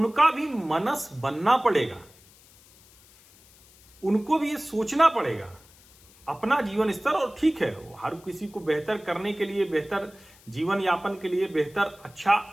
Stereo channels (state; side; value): noise; left; hiss, 26 dB below the sound